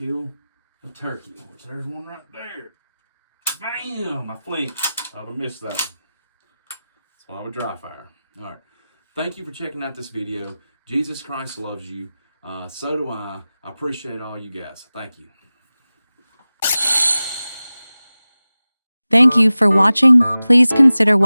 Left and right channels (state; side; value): inverted; both; correlation -0.96